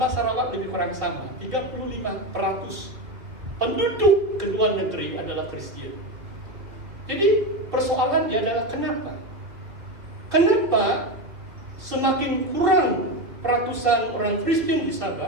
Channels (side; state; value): left; late; 2.7 ms